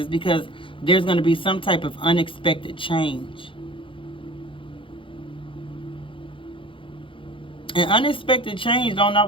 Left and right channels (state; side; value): late; right; 0.25 ms